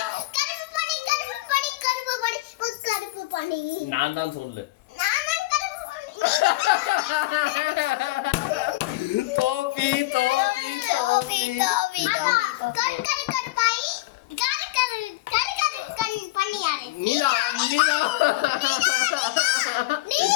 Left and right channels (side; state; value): right; quieter; 19.4 dB